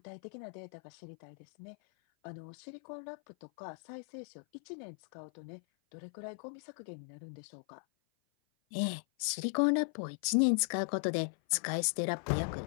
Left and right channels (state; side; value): silent; right; 53 dB below the other